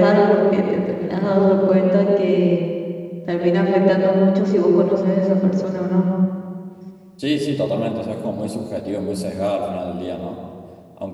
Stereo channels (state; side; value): identical; both; correlation 1.00